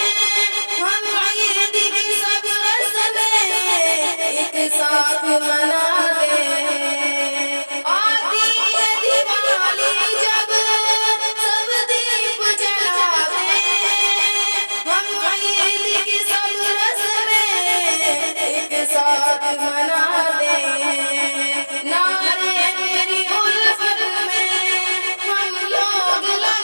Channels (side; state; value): both; inverted; correlation -1.00